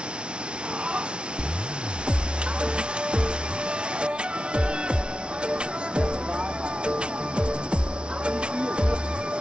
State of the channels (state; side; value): late; left; 0.057 ms